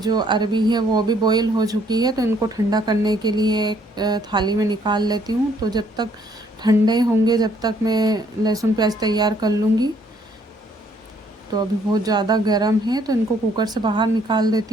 अरबी है वो भी बॉईल हो चुकी है, तो इनको ठंडा करने के लिए एक थाली में निकाल लेती हूँ। तो जब तक ठंडे होंगे जब तक मैं लहसुन प्याज तैयार कर लूँगी। तो अभी बहुत ज़्यादा गर्म है, तो इनको कुकर से बाहर निकाल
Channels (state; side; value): normal; both; correlation 0.65